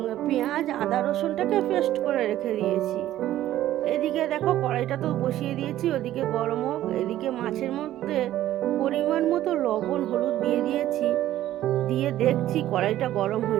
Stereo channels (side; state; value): left; quieter; 13.5 dB